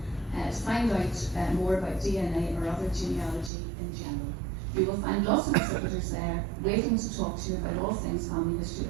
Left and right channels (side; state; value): left; drops out; at 3.5 s